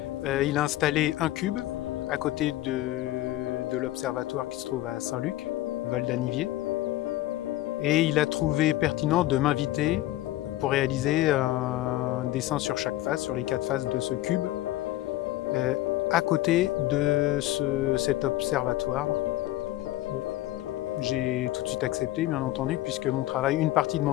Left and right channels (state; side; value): quieter; right; 15.7 dB